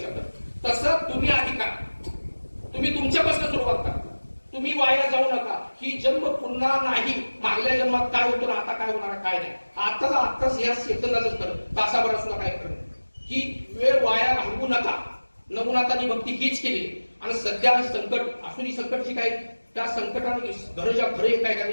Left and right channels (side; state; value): both; inverted; correlation -1.00